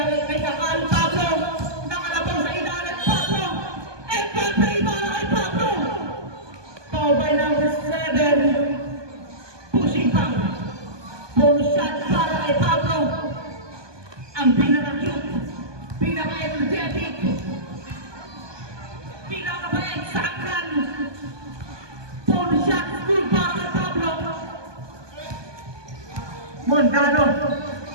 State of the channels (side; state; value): left; late; 1.2 ms